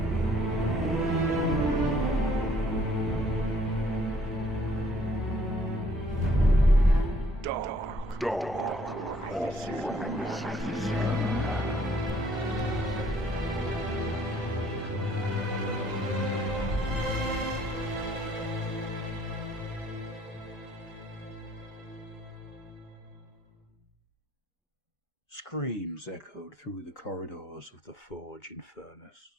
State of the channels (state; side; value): normal; both; correlation 0.62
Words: Screams echoed through the corridors of the forge and